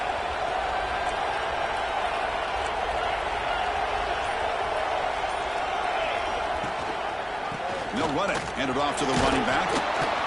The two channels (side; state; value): both; identical; correlation 1.00